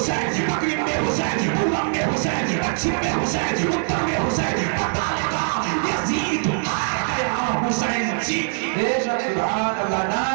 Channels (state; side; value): silent; left; 64 dB below the other